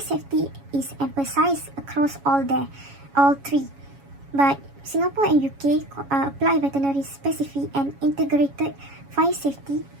safety is emphasized across all three. But Singapore and UK apply veterinary specific and integrated fire safety,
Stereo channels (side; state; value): left; late; 7.2 ms